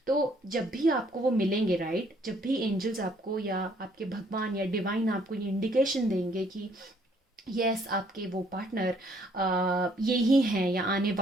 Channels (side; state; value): both; normal; correlation 0.65